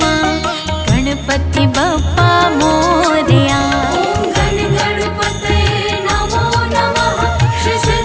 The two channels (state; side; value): identical; both; correlation 1.00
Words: गणपति बप्पा मोरया। ओम गण गणपतये